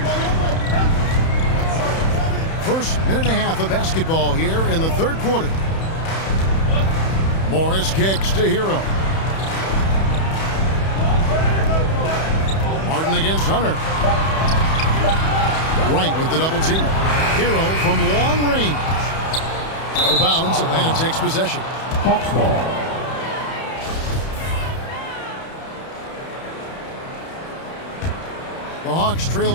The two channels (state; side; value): late; right; 31 ms